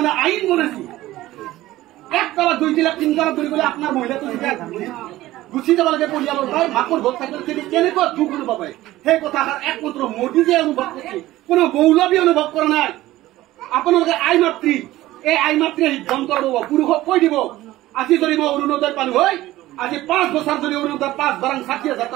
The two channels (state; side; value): quieter; left; 16.3 dB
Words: আইন বনাইছে 1 তলা 2 তলা 3 তলা ধৰি গ'লে আপোনাৰ মহিলাটো গুচি যাব লাগে পৰিয়ালৰ ভাই মাকৰ ভোট থাকিলে কেনেকুৱা দুখ অনুভৱ হয় সেই কথাষাৰ একমাত্ৰ মোদী যে অনুভৱ কৰিছে কোনো মৌলবী অনুভৱ কৰা নাই আপোনালোকে আই মাতৃ এই আই মাতৃয়ে সিদ্ধান্ত ল'ব পুৰুষক কৈ দিব আজি যদি মই অৰুণোদয় পালো হয় আজি 5 বছৰ যদি অৰুণোদয় 5 বাৰাং 60,000